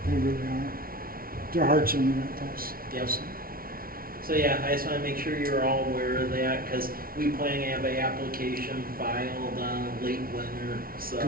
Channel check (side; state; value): left; late; 0.43 ms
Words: They really are. Their heart's in the right place. Yep. So yeah, I just want to make sure you're all aware of that, because we plan to have an application filed late winter. So